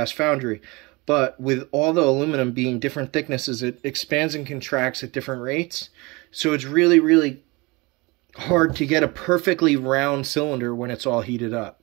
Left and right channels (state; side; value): quieter; left; 25.3 dB